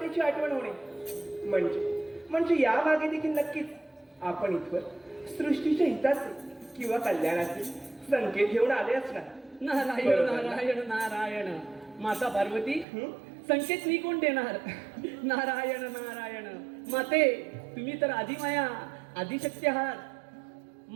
आठवण होणे म्हणजे या मागे देखील नक्कीच आपण इथवर सृष्टीच्या हिताचे किंवा कल्याणाचे संकेत घेऊन आले असणार. नारायण नारायण नारायण. माता पार्वती संकेत मी कोण देणार? नारायण नारायण माते, तुम्ही तर आदिमाया आदिशक्ती आहात.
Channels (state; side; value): drops out; left; at 12.9 s